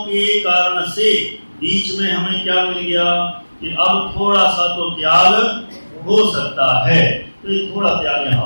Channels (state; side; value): inverted; both; correlation -1.00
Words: के कारण से बीच में हमें क्या मिल गया कि अब थोड़ा सा तो त्याग हो सकता है। तो ये थोड़ा त्याग यहाँ